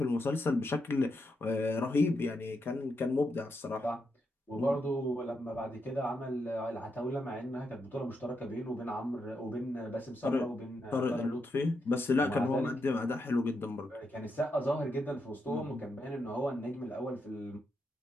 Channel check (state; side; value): normal; both; correlation 0.83